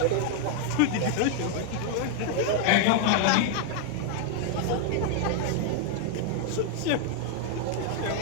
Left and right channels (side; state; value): both; different; correlation 0.00